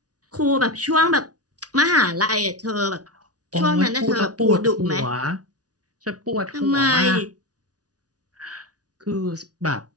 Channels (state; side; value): late; left; 0.68 ms